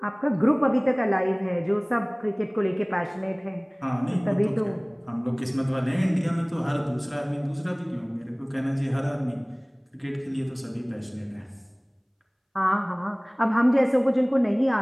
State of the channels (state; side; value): identical; both; correlation 1.00